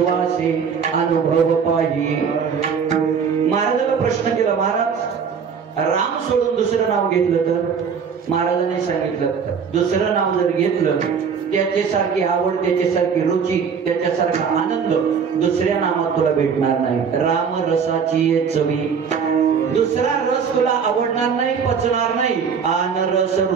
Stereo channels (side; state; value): left; quieter; 6.5 dB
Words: अनुभव पाही। महाराजांना प्रश्न केला, महाराज राम सोडून दुसरं नाव घेतलं तर? महाराजांनी सांगितलं दुसरं नाव जर घेतलं त्याच्यासारखी आवड, त्याच्यासारखी रुची, त्याच्यासारखा आनंद दुसऱ्या नामात तुला भेटणार नाही। राम रसाची चवी, दुसरा रस तुला आवडणार नाही, पचणार नाही। आन रस